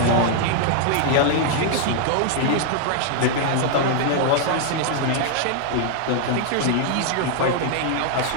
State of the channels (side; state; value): both; different; correlation 0.00